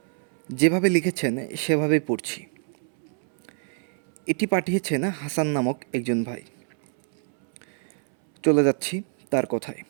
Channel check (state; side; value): silent; left; 61 dB below the other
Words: যেভাবে লিখেছেন সেভাবেই পড়ছি। এটি পাঠিয়েছেন হাসান নামক একজন ভাই। চলে যাচ্ছি তার কথায়।